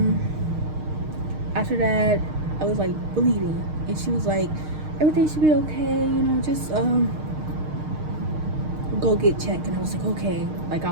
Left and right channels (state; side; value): late; left; 6.5 ms